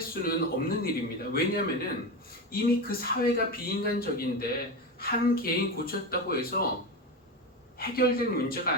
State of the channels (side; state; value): both; normal; correlation 0.19